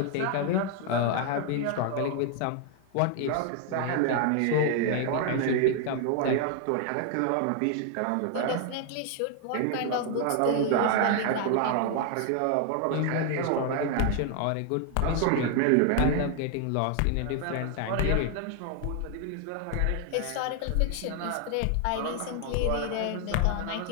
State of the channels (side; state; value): both; different; correlation 0.00